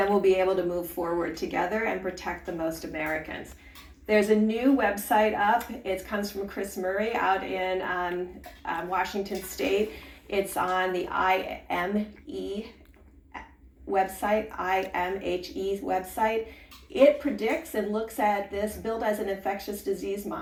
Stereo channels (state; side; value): identical; both; correlation 1.00